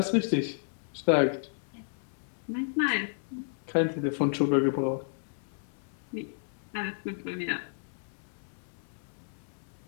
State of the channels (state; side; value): silent; right; 56 dB below the other